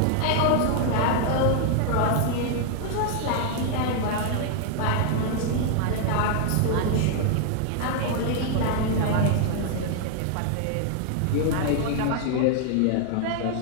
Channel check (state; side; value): different; both; correlation 0.00